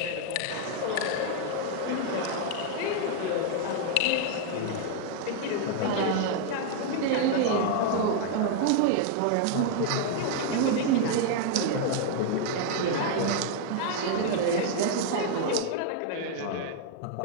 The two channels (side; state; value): both; different; correlation 0.00